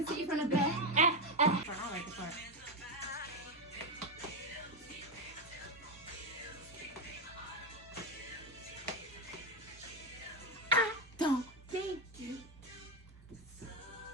see it from the back. I like the part. I don't think you.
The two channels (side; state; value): both; normal; correlation 0.09